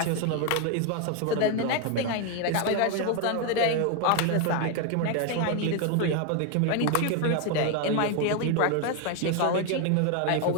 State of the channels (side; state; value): both; different; correlation 0.01